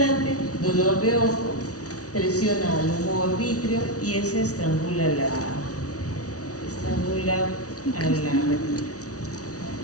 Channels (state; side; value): late; right; 0.67 ms